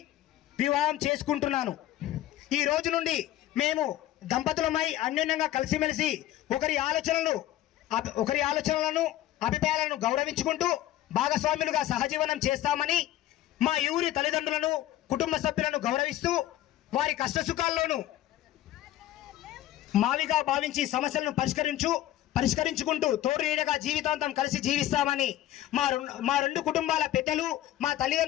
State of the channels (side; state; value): right; quieter; 13.6 dB